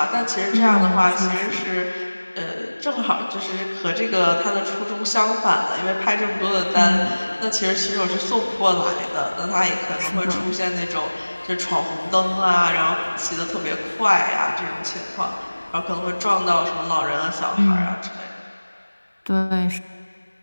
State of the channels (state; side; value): inverted; both; correlation -1.00